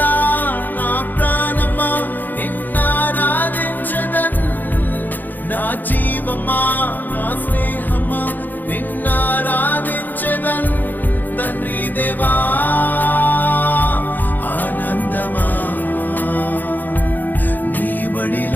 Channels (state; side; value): late; right; 0.086 ms